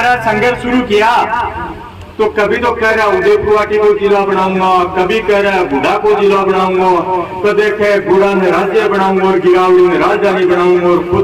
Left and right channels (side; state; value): both; identical; correlation 1.00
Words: रहा, संघर्ष शुरू किया, तो कभी तो कह रहा उदयपुर को जिला बनाऊंगा, कभी कह रहा गुड़ा को जिला बनाऊंगा, तो देखे गुड़ा में राज्य बनाऊंगा और गिरावली में राजधानी बनाऊंगा और